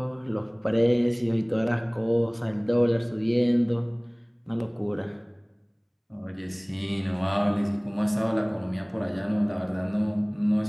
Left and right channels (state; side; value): identical; both; correlation 1.00